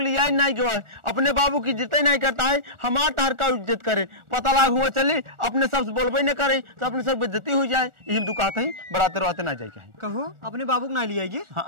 लिए आई नहीं गए, अपने बाबू की इज्जत ही नहीं करता है, हमार तार का इज्जत करे। पता लाग हुआ चली अपने सबसे बोलबे न करे तो अपने सब बेइज्जती हो जाए, यही दुकाते ही बराते रहते ना जाए। कहो अपने बाबू को ना लिया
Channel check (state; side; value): late; left; 1.4 ms